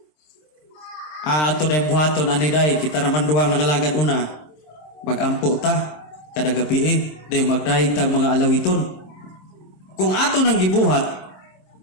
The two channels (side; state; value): right; late; 26 ms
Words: Ato na yung buhaton, aniday, kita naman duwang nangalagad una. Magampo ta, kada gabi dahil magdahig tag mga alawiton. Kung ato nang gibuhat,